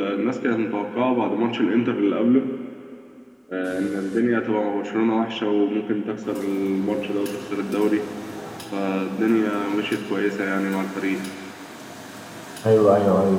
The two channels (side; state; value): both; identical; correlation 1.00